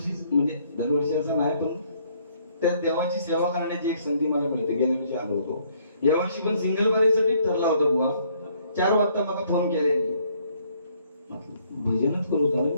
असं नाही पण त्या देवाची सेवा करण्याची एक संधी मला मिळते गेल्या वर्षी आलो होतो यावर्षी पण सिंगल बरेसाठी ठरला होता बुवा 4 वाजता मला फोन केल्याने भजनच करू झालं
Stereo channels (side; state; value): both; inverted; correlation -0.66